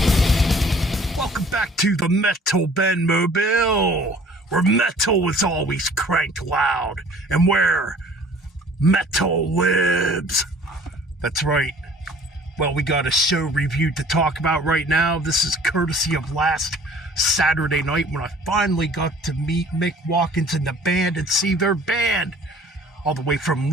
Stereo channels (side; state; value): both; normal; correlation 0.51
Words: Welcome back to the Metal Band Mobile, where metal is always cranked loud, and where metal lives. That's right. Well, we got a show review to talk about right now. This is courtesy of last Saturday night when I finally got to meet Mick Watkins and the band and see their band all the way from